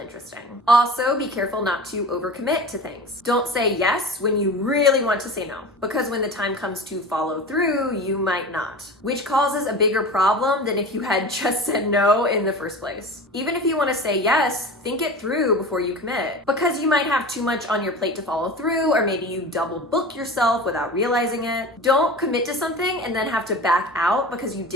Also, be careful not to overcommit to things. Don't say yes when you really want to say no, because when the time comes to follow through, you might not, which causes a bigger problem than if you had just said no in the first place. Even if you want to say yes, think it through before you commit, because you might have too much on your plate to follow through, or maybe you double book yourself without realizing it. Don't commit to something and then have to back out because you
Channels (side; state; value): both; normal; correlation 0.34